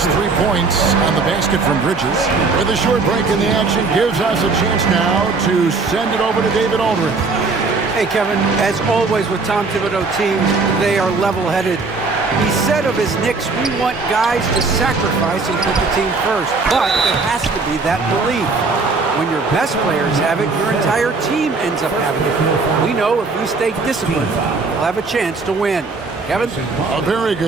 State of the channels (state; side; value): quieter; left; 4.1 dB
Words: 3 points on the basket from Bridges. With a short break in the action, gives us a chance now to send it over to David Aldridge. Hey, Kevin, as always with Tom Thibodeau teams, they are level-headed. He said of his Knicks, we want guys to sacrifice and put the team first, but it has to be that belief. When your best players have it, your entire team ends up having it. We know if we stay disciplined, we'll have a chance to win. Kevin? A very